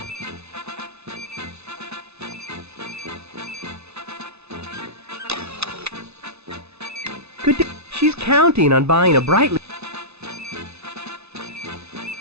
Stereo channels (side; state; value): left; late; 0.79 ms